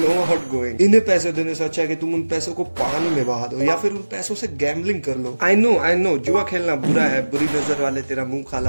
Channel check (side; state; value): both; inverted; correlation -1.00